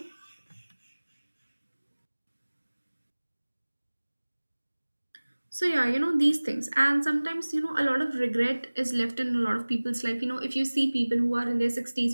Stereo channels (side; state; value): both; inverted; correlation -1.00